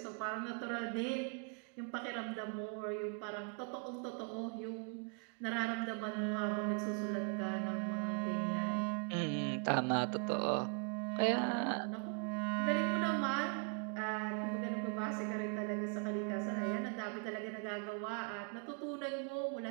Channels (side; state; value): left; quieter; 37.3 dB